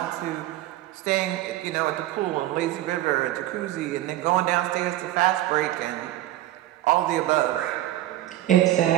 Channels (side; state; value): left; quieter; 14.7 dB